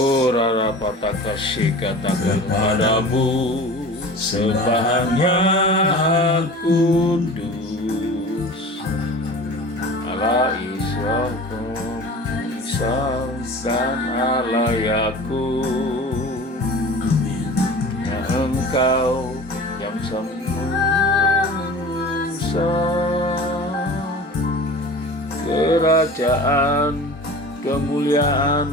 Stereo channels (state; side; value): normal; both; correlation 0.39